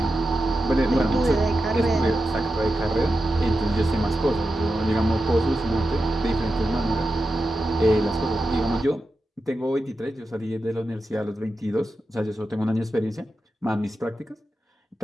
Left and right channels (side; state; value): both; normal; correlation 0.90